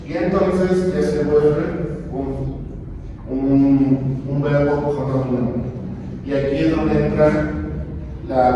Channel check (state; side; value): identical; both; correlation 1.00